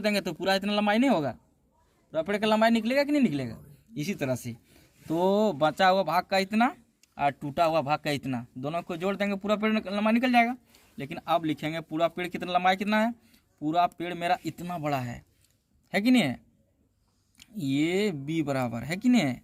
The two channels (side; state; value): both; identical; correlation 1.00